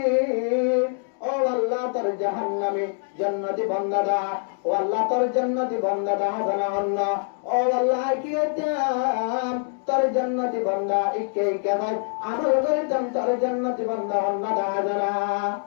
ও আল্লাহ তোর জাহান্নামী জান্নাতি বান্দা দা ও আল্লাহ তোর জান্নাতি বান্দা দা জানা অন্য ও আল্লাহ কি এতাম তোর জান্নাতি বান্দা ইকে ইকে ভাই আমল করিতাম তোর জান্নাতি বান্দা অন্য দা জানা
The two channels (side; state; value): right; silent; 62 dB below the other